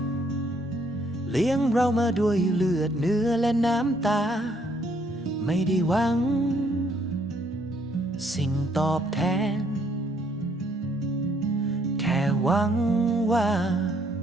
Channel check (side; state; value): both; normal; correlation 0.68